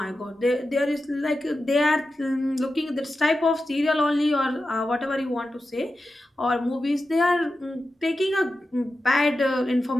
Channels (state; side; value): normal; both; correlation 0.92